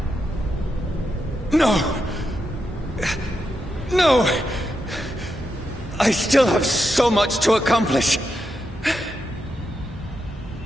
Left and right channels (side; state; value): both; normal; correlation 0.85